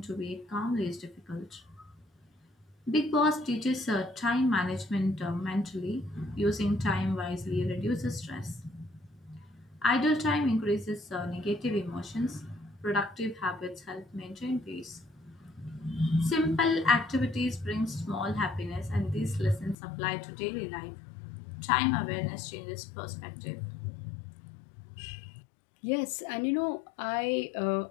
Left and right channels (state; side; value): drops out; right; at 19.8 s